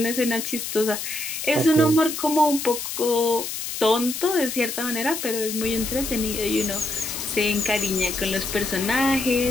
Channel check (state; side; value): noise; left; hiss, 5 dB below the sound